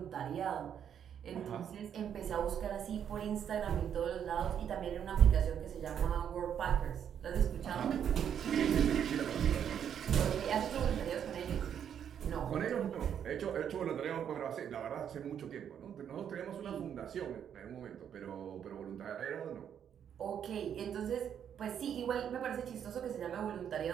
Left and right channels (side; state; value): left; quieter; 8.8 dB